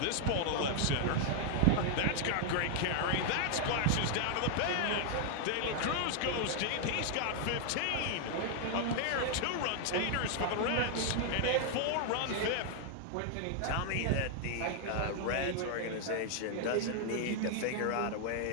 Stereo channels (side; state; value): both; different; correlation 0.00